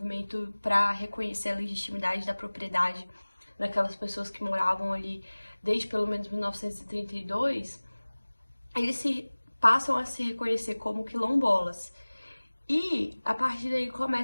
para reconhecer a legitimidade da propriedade daquelas pessoas que moravam ali desde pelo menos 1932, eles passam a se reconhecer como quilombolas. E a partir daí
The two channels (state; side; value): inverted; both; correlation -1.00